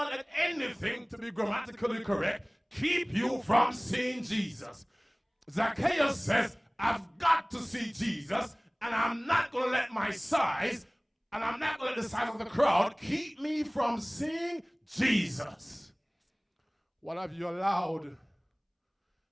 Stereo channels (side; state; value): both; identical; correlation 1.00